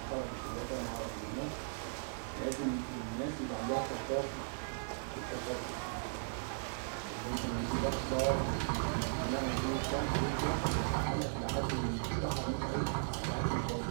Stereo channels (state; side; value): silent; left; digital silence